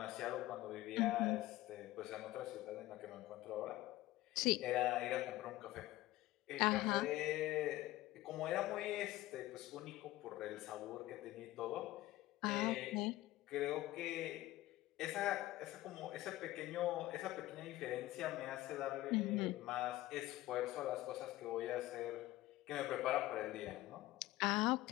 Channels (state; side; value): quieter; right; 16.7 dB